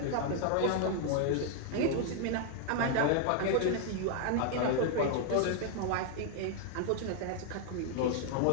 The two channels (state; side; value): different; both; correlation 0.00